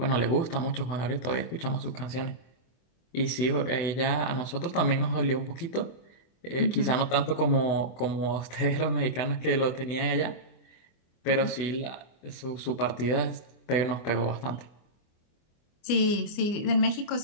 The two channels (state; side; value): late; right; 24 ms